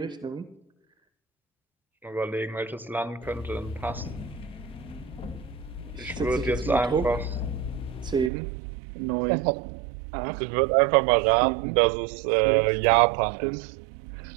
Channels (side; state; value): left; drops out; at 8.3 s